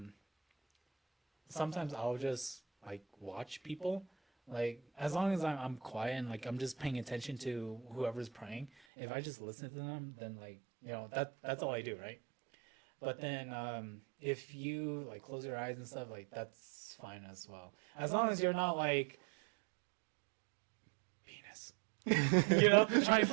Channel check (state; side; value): drops out; left; at 8.7 s